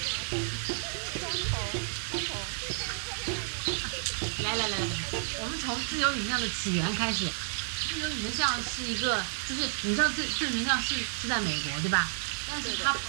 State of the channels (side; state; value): left; silent; digital silence